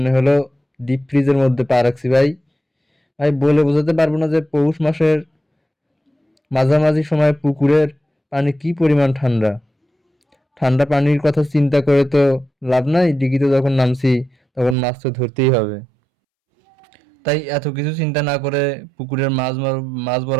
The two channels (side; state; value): left; drops out; at 14.8 s